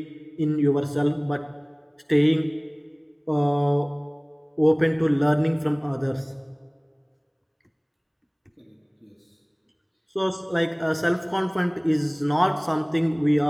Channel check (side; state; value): both; identical; correlation 1.00